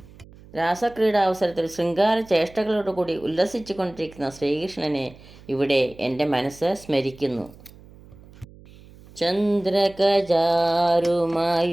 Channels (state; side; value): noise; right; hum, 22 dB below the sound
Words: രാസക്രീഡാവസരത്തിൽ ശൃംഗാര ചേഷ്ടകളോടുകൂടി ഉല്ലസിച്ചു കൊണ്ടിരിക്കുന്ന ശ്രീകൃഷ്ണനെ ഇവിടെ എൻ്റെ മനസ്സ് സ്മരിക്കുന്നു.